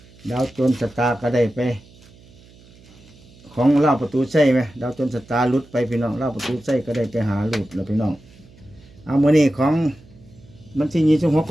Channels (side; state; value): right; noise; hum, 25 dB below the sound